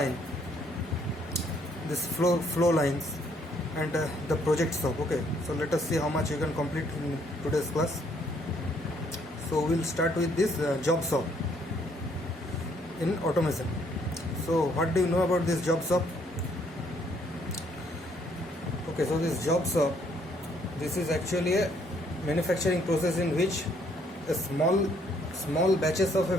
this flow lines, and the project shop. Okay, so let us see how much you can complete in today's class. So we'll start with this job shop in automation. So what do you know about this job shop? Okay, so this job shop, this is actually a manufacturing process in which a small batches of a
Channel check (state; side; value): normal; both; correlation 0.67